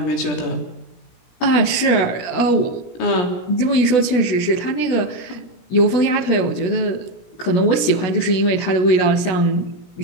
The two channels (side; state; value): right; late; 17 ms